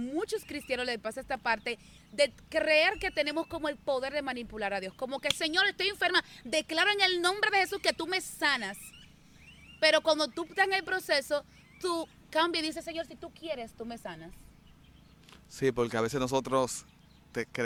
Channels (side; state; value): both; identical; correlation 1.00